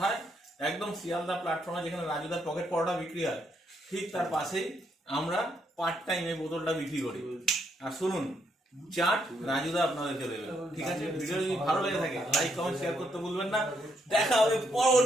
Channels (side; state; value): both; normal; correlation 0.75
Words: একদম শিয়ালদা প্ল্যাটফর্মে যেখানে রাজুদার পকেট পরোটা বিক্রি হয় ঠিক তার পাশেই আমরা পার্ট টাইম এই বোতলটা বিক্রি করি। আর শুনুন, চাট রাজুদা আপনাদেরকে দেবে। ঠিক আছে, ভিডিও যদি ভালো লেগে থাকে লাইক কমেন্ট শেয়ার করতে ভুলবেন না। দেখা হবে